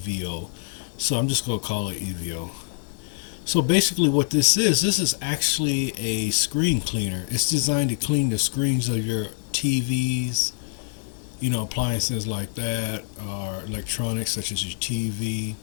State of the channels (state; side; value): silent; right; digital silence